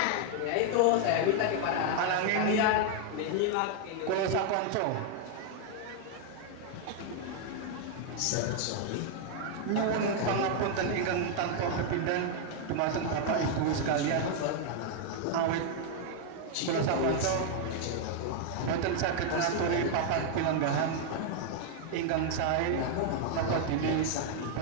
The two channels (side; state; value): both; different; correlation 0.00